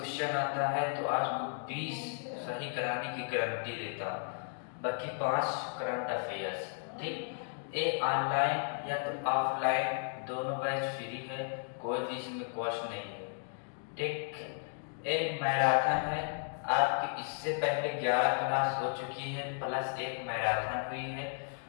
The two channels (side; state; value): right; silent; 55 dB below the other